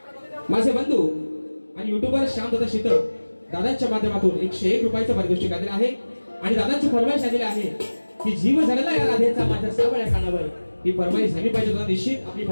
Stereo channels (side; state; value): both; inverted; correlation -1.00